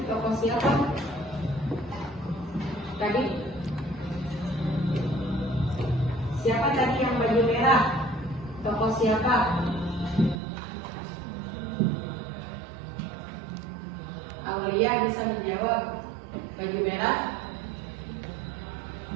tokoh siapa? Tadi. Siapa tadi yang baju merah? Tokoh siapa? Aulia bisa menjawab. Baju merah.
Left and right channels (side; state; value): left; drops out; at 10.4 s